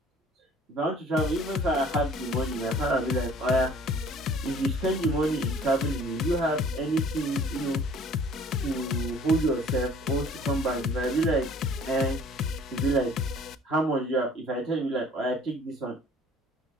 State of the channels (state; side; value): normal; both; correlation 0.52